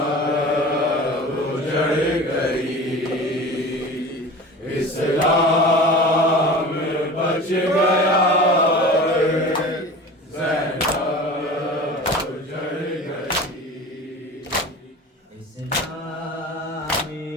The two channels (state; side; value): normal; both; correlation 0.36